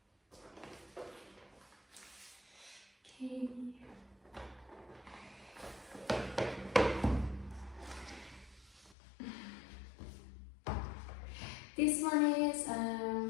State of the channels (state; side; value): drops out; right; at 9.0 s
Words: Okay. This one is